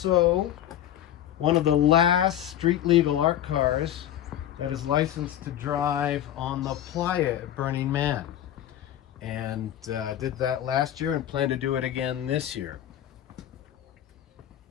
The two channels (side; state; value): right; quieter; 11.6 dB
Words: one of the last street legal art cars that is licensed to drive on the playa at Burning Man. And did that last year and plan to do it again this year.